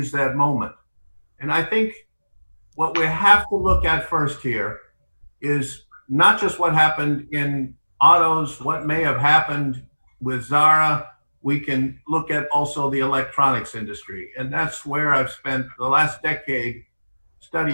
that moment. And I think what we have to look at first here is not just what happened in autos, what may have happened with Zara. We can look at also the electronics industry. And that's where I've spent the last decade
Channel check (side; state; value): both; inverted; correlation -1.00